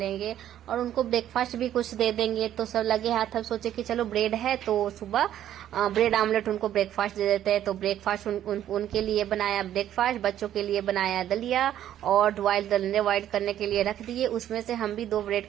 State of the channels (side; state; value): left; quieter; 11.4 dB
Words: और उनको ब्रेकफास्ट भी कुछ दे देंगे। तो सब लगे हाथ, अब सोचे कि चलो ब्रेड है तो सुबह ब्रेड आमलेट उनको ब्रेकफास्ट दे देते हैं। तो ब्रेकफास्ट उनके लिए बनाया ब्रेकफास्ट, बच्चों के लिए बनाया दलिया और बॉयल करने के लिए रख दिए। उसमें से हम भी 2